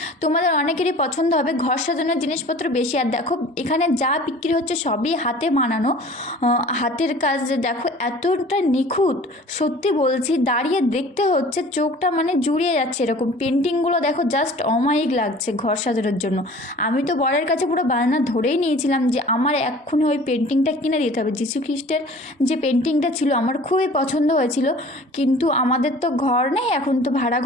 তোমাদের অনেকেরই পছন্দ হবে। ঘর সাজানোর জিনিসপত্র বেশি। আর দেখো এখানে যা বিক্রি হচ্ছে সবই হাতে বানানো, হাতের কাজ। দেখো এতটা নিখুঁত, সত্যি বলছি, দাঁড়িয়ে দেখতে হচ্ছে, চোখটা মানে জুড়িয়ে যাচ্ছে। এরকম পেন্টিংগুলো দেখো জাস্ট অমায়িক লাগছে ঘর সাজানোর জন্য। আমি তো বরের কাছে পুরো বায়না ধরেই নিয়েছিলাম যে আমার এক্ষুনি ওই পেন্টিংটা কিনে দিতে হবে। যীশু খ্রিস্টের যে পেন্টিংটা ছিল আমার খুবই পছন্দ হয়েছিল, কিন্তু আমাদের তো ঘর নেই, এখন তো ভাড়া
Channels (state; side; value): normal; both; correlation 0.46